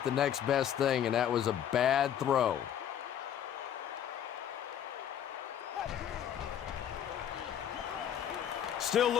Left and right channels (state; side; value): quieter; right; 9.8 dB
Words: the next best thing, and that was a bad throw. Still